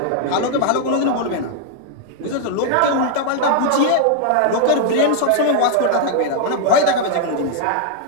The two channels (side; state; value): both; different; correlation 0.00